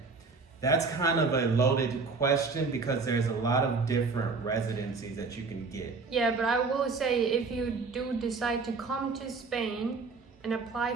That's kind of a loaded question because there's a lot of different residencies that you can get. Yeah, but I will say, if you do decide to come to Spain and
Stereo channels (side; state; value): left; quieter; 4.4 dB